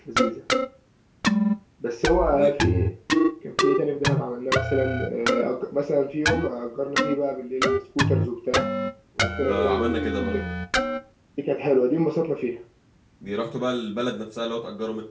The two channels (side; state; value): both; identical; correlation 1.00